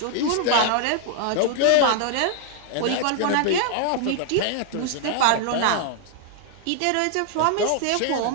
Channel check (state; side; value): different; both; correlation 0.00